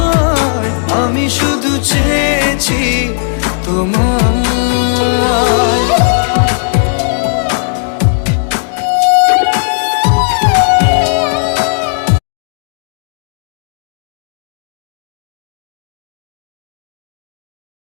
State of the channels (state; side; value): silent; right; digital silence